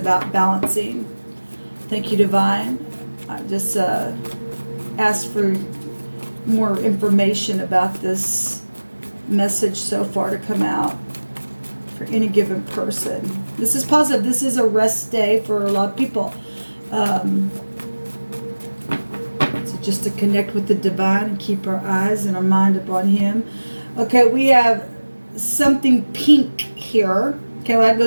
balancing. Thank you, divine. I just asked for more information about this message so far to come out for any given person. This is positive. This is a rest day for a lot of people. So just to connect with the divine and keep our eyes and our mind upon him. Okay, we have something pink here. Okay, well, that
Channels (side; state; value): both; inverted; correlation -1.00